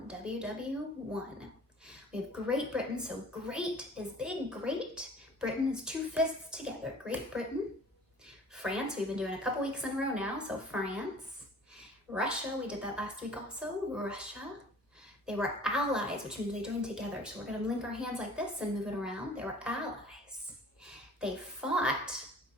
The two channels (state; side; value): normal; both; correlation 0.48